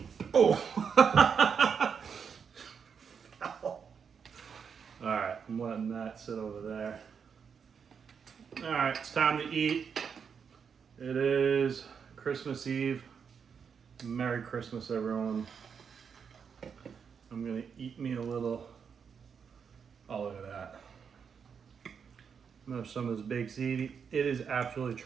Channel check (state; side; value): quieter; left; 6.6 dB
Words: Oh! Alright, I'm letting that sit over there. Alright, it's time to eat. It is Christmas Eve. Merry Christmas, everyone. I'm gonna eat me a little. Oh, look at that. I'm gonna have some of this baked ziti. It is absolutely